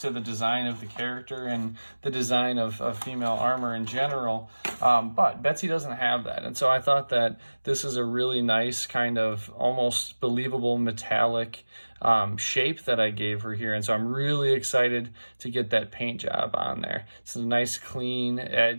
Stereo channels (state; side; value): inverted; both; correlation -1.00